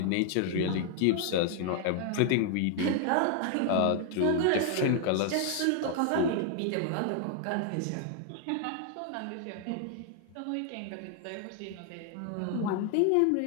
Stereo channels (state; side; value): different; both; correlation 0.00